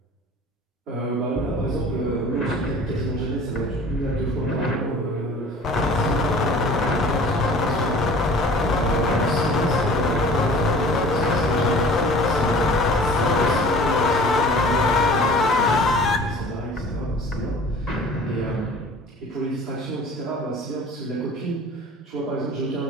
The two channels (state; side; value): normal; both; correlation 0.45